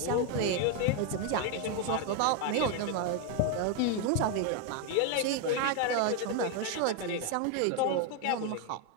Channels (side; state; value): both; different; correlation 0.01